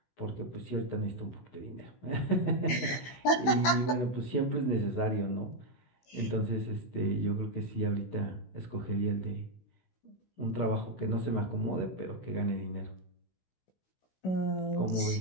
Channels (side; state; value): right; late; 16 ms